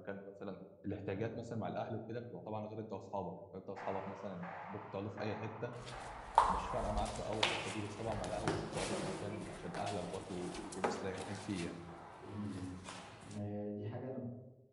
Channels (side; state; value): both; identical; correlation 1.00